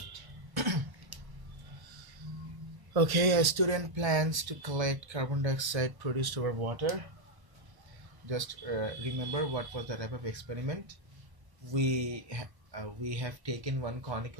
Okay, a student plans to collect carbon dioxide produced over water. Just remember what was the type of experiment. We have taken one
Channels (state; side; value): late; left; 1.1 ms